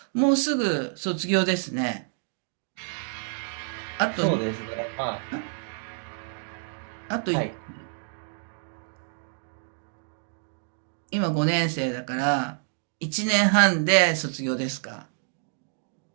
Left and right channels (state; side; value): silent; left; 59 dB below the other